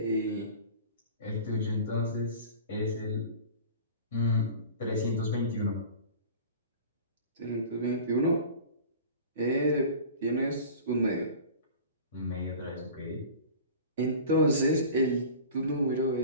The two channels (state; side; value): inverted; both; correlation -0.39